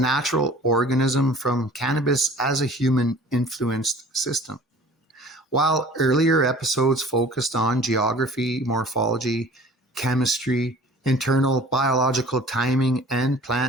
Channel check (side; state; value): both; normal; correlation 0.47